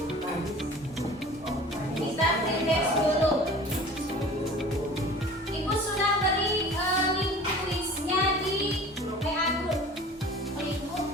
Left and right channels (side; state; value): both; normal; correlation 0.43